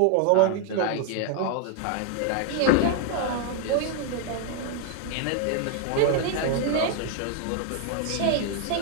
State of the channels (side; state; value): both; different; correlation 0.00